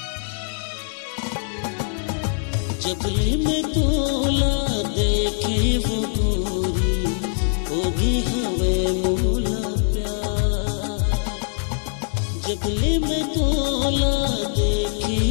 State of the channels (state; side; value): silent; right; 64 dB below the other